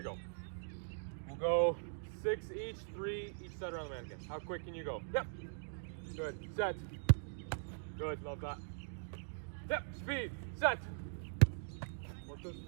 go. We'll go 6 each, 3 each side around the mannequin. How quick can you go? Yep. Good. Set. Good. Love that. Yep. Speed. Set. Work those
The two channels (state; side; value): silent; left; digital silence